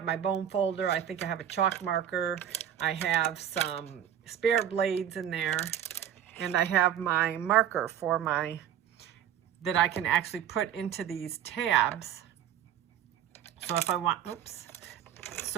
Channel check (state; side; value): quieter; left; 9.9 dB